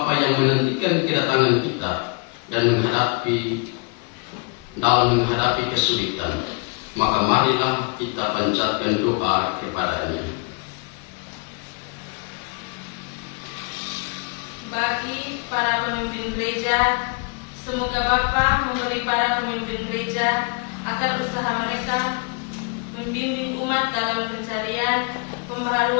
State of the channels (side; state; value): right; quieter; 34.3 dB